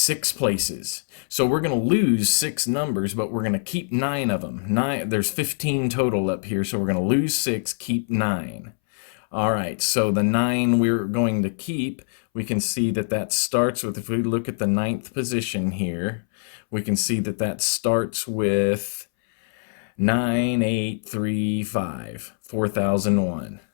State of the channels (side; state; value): right; silent; 62 dB below the other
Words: places. So we're going to lose 6 numbers, but we're going to keep 9 of them. There's 15 total up here, so we're going to lose 6, keep 9. All right, so the 9 we're going to keep, we can see that starts with, if we look at the 9th position here, we can see that starts with 9835, 4001.